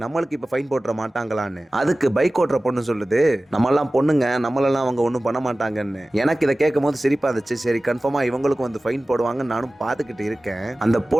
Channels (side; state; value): both; normal; correlation 0.97